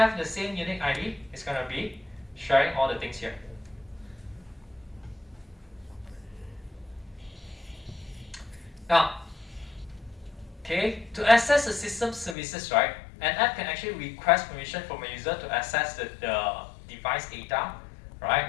the same unique ID, it's going to be sharing all the things here. Now, okay, to access the system services, right, an app can actually request permission from a user to access the device data,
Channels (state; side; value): drops out; right; at 12.4 s